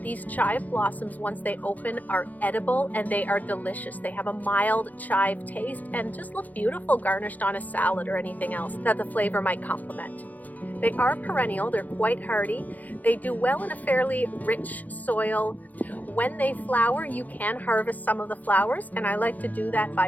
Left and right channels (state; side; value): late; right; 0.080 ms